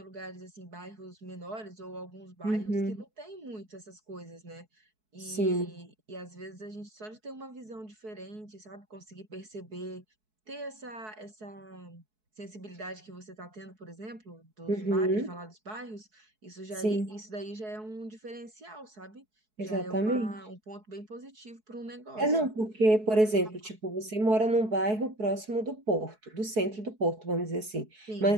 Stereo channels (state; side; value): late; left; 4.6 ms